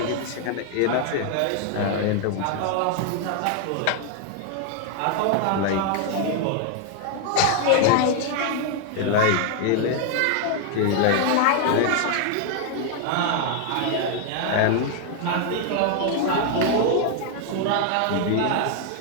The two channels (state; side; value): different; both; correlation 0.00